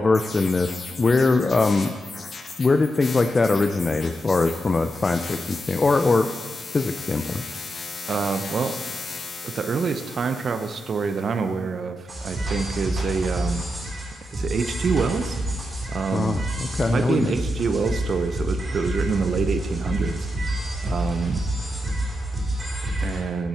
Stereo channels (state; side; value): normal; both; correlation 0.86